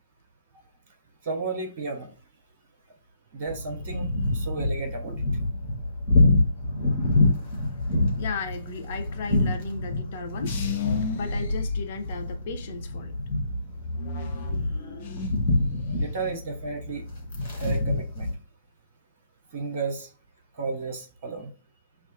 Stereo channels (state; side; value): inverted; both; correlation -0.74